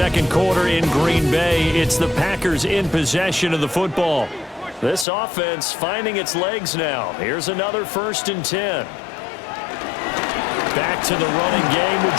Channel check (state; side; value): drops out; right; at 5.1 s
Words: quarter in Green Bay. It's the Packers in possession of the football. This offense finding its legs now. Here's another 1st and 10. Back to the running game with